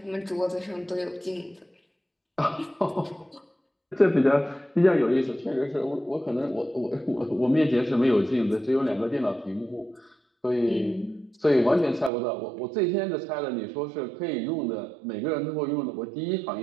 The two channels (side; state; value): left; drops out; at 12.1 s